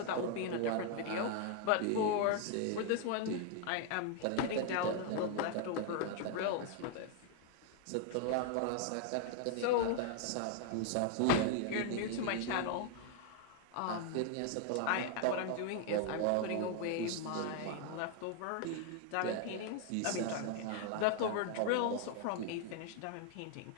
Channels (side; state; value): both; different; correlation 0.00